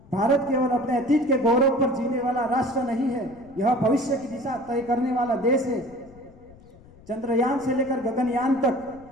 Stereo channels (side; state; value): left; noise; rumble, 24 dB below the sound